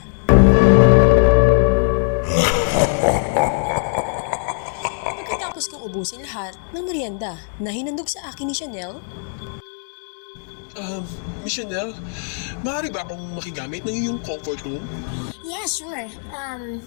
Pagkatapos kong ubusin lahat ng merienda na hinandog sa akin ni Chanel, Miss Chanel, maaari ba akong makigamit ng iyong comfort room? Yeah, sure.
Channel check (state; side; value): silent; right; digital silence